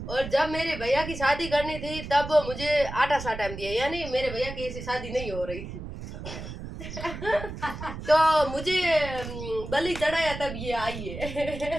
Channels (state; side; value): noise; right; rumble, 9 dB below the sound